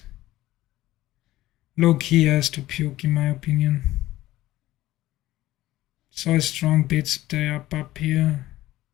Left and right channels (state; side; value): quieter; right; 15.9 dB